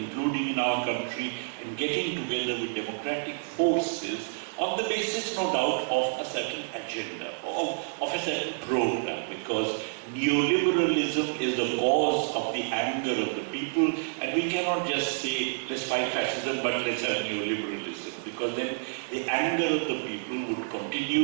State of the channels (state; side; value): silent; left; digital silence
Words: in our country, and getting together with democratic forces on the basis, no doubt, of a certain agenda, of a certain program, because neoliberalism is the cause of the anger of the people, and we cannot just say, let's fight fascism, but let's have neoliberalism, because then the anger of the people would